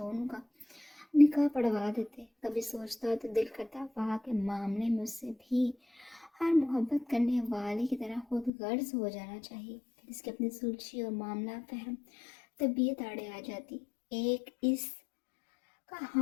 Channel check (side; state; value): right; drops out; at 8.5 s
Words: का निकाह पढ़वा देते। कभी सोचता तो दिल करता वहाँ के मामले में उससे भी हर मोहब्बत करने वाले की तरह खुद गर्ज हो जाना चाहिए। फिर इसकी अपनी सुलझी और मामला फहम तबीयत आड़े आ जाती। एक इस का